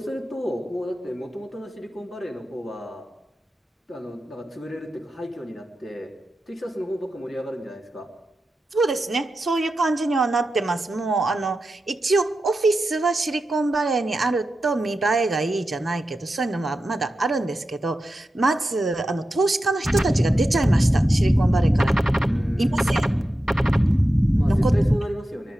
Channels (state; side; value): normal; both; correlation 0.91